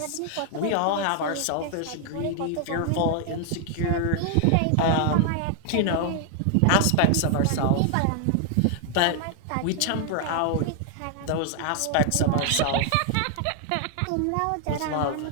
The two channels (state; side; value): different; both; correlation 0.00